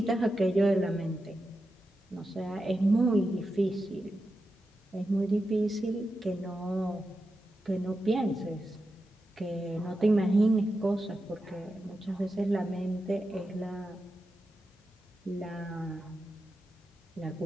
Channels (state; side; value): normal; both; correlation 0.90